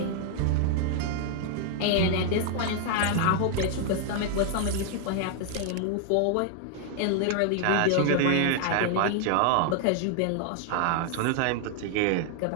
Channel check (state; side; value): different; both; correlation 0.00